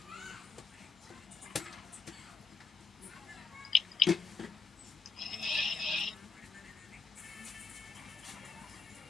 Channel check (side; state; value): right; quieter; 4.5 dB